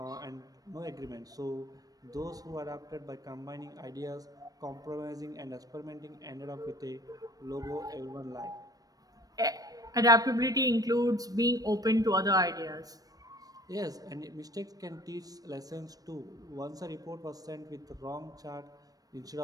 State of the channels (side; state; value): left; late; 0.18 ms